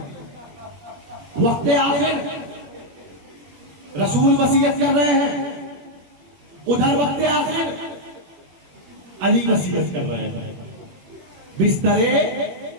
وقت آخر رسول وصیت کر رہے ہیں، ادھر وقت آخر علی وصیت کر رہے ہیں. بستر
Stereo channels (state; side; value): late; left; 21 ms